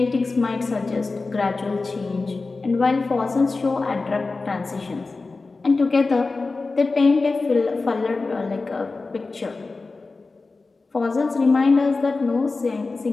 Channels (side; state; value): right; quieter; 3.8 dB